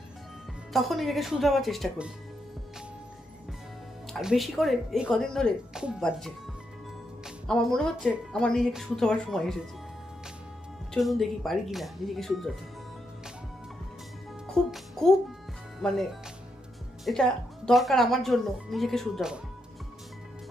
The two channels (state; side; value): normal; both; correlation 0.81